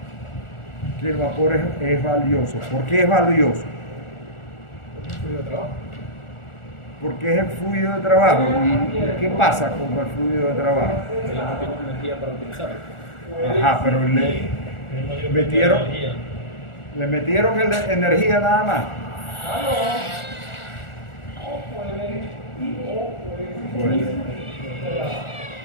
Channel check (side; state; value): right; late; 1.4 ms